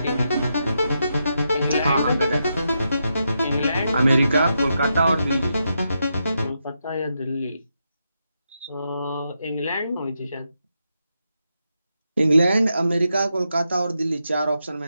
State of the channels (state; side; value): inverted; both; correlation -0.84